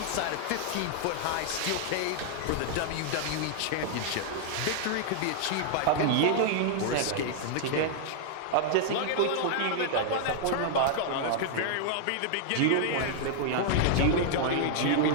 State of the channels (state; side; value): different; both; correlation -0.01